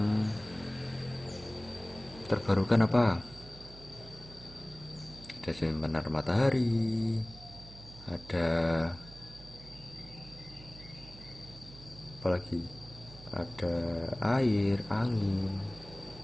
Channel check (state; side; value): noise; right; hum, 17 dB below the sound